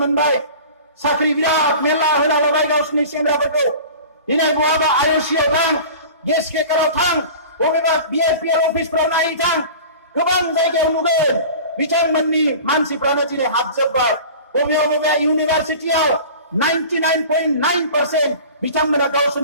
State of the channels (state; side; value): inverted; both; correlation -0.39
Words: साख्रि बिराद मेरला होना लाबाय गावसोरनि सेंग्राफोरखौ। दिनै बहाबा IOC-आव थां, गेस केकाराव थां, बबेबा BRPL अफिसफ्राव नायै थां, गोबां जायगायाव नुगोन बिथांमोननि मानसिफ्रानो दिनै हाबजोब्बाय। बबेबा इउनिभार्सिटियाव 99.9% बिथांमोना